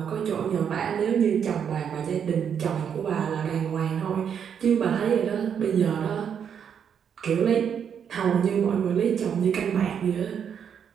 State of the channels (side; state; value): left; quieter; 7.8 dB